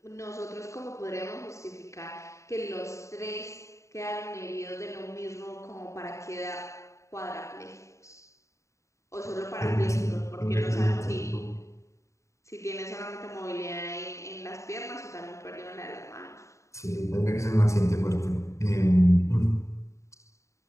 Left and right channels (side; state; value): right; late; 0.14 ms